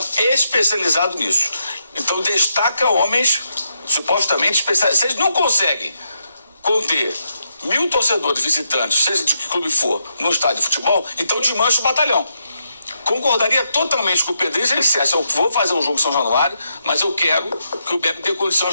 especializado nisso. Então destaca homens supostamente especializados. Vocês não conseguem conter 1.000 torcedores visitantes, seja de que clube for, no estádio de futebol, então desmancha o batalhão. Concordaria totalmente com o Pedrinho se ele dissesse, eu vou fazer um jogo em São Januário, mas eu quero que o BEP tenha condição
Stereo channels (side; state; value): both; inverted; correlation -0.80